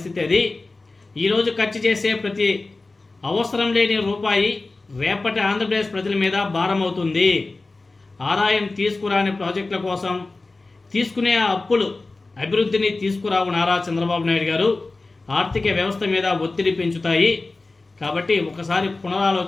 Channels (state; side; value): quieter; right; 3.4 dB